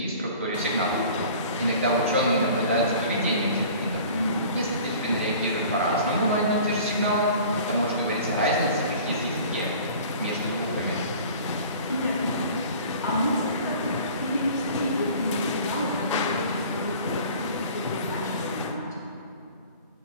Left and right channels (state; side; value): inverted; both; correlation -0.45